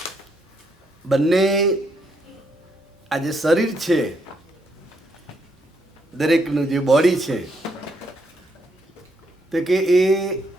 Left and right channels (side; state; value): both; normal; correlation 0.75